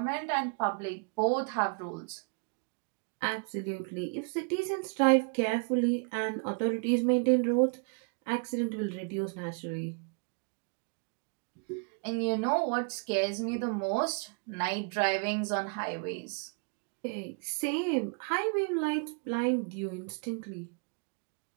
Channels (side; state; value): left; quieter; 39.3 dB